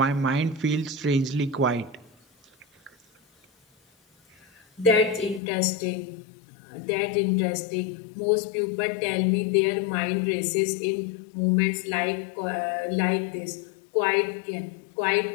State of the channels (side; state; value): right; drops out; at 5.4 s